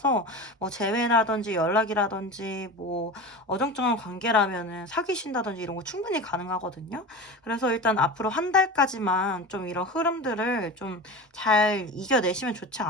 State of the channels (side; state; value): both; normal; correlation 0.30